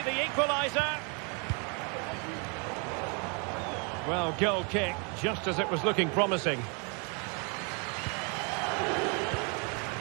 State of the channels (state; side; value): quieter; left; 34.6 dB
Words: the equaliser. Well, goal kick, just as it was looking promising.